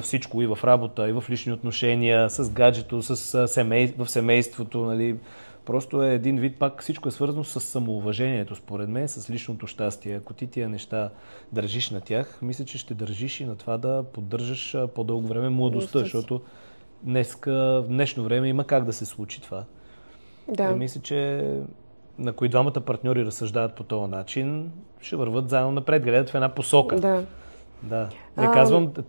всичко, и в работа, и в лични отношения, с гаджето, в семейството. Нали. Просто е един вид, пак всичко е свързано с самоуважението, според мен, с личното щастие. Ако ти тия неща държиш на тях, мисля, че ще държиш и на това да поддържаш по-дълго време младостта, защото в днешно време има как да се случи това. Мисля, че на кои двамата партньори разсъждават по този начин, ще върват заедно напред, гледат в една посока. Да. Не казвам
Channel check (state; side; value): inverted; both; correlation -1.00